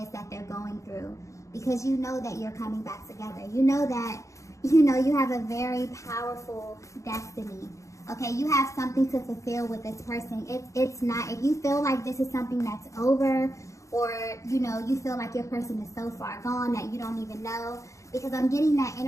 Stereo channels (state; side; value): late; right; 0.15 ms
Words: that they're going through. Because you know that you're coming back together. You know that, you have a very powerful destiny. Okay, you have something to fulfill with this person. It's not, if you feel like this is something that's over, or, you feel like your person is so far gone that you don't even know, because I'm getting that